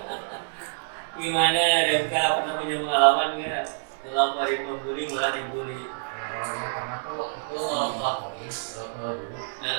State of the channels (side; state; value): left; silent; 60 dB below the other